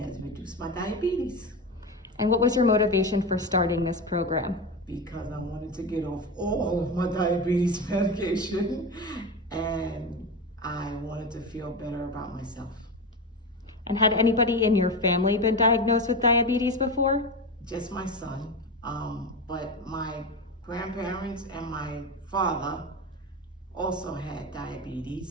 reduced my diabetes And what was your motivation for starting this program? because I wanted to get off all of my diabetes medication and I wanted to feel better about myself. And had anybody in your family been diagnosed with diabetes before? Just my son, but my grandparents and my father also had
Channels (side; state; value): both; normal; correlation 0.20